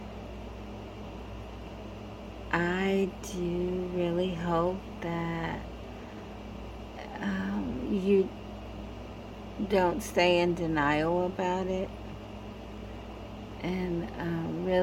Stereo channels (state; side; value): identical; both; correlation 1.00